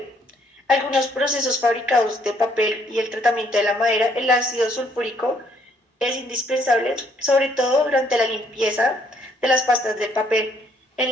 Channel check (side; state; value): both; normal; correlation 0.67